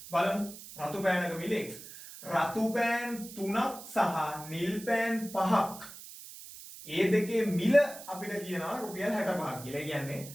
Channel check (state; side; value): noise; right; hiss, 14 dB below the sound